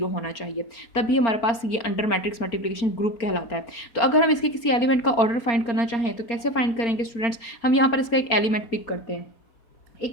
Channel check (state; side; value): late; right; 4.4 ms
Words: होना चाहिए, तभी हमारे पास ये अंडर मैट्रिक्स मल्टीप्लिकेशन ग्रुप कहलाता है। तो अगर हम इसके किसी एलिमेंट का ऑर्डर फाइंड करना चाहें तो कैसे फाइंड करेंगे स्टूडेंट्स, हम यहाँ पर इसका एक एलिमेंट पिक करते हैं।